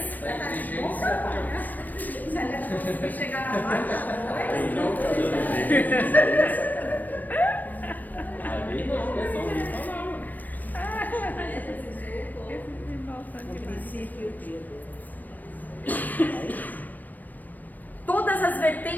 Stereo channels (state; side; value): late; right; 0.086 ms